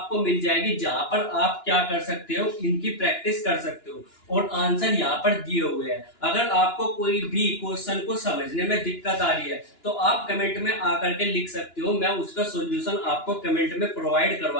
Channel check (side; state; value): right; late; 2.9 ms